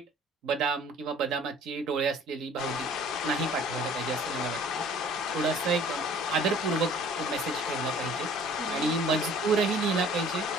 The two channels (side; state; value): both; normal; correlation 0.51